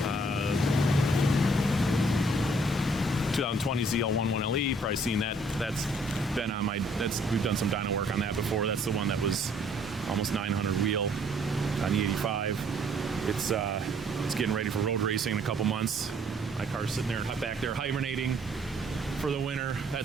2020 ZL1 1LE. Probably seen that. That's been on my. We've done some dyno work on that before. That's the one that was almost 900 wheel on the 85. It's getting ready for road racing in a couple months. My car's sitting there back there hibernating for the winter.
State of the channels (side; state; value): both; normal; correlation 0.62